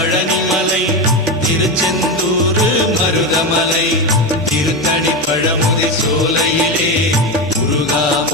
திருச்செந்தூர் மருதமலை திருத்தணி பழமுதி சோலையிலே முருகா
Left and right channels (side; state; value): both; normal; correlation 0.16